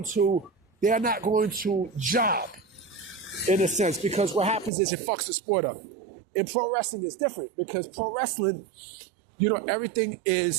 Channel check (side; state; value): left; drops out; at 4.7 s